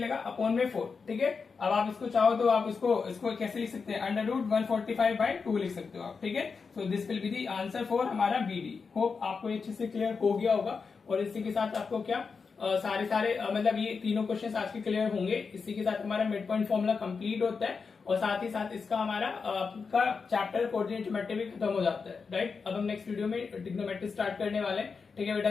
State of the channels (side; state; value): right; quieter; 5.1 dB